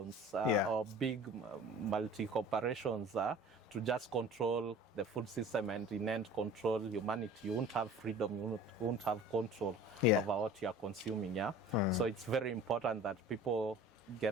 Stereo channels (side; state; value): both; normal; correlation 0.43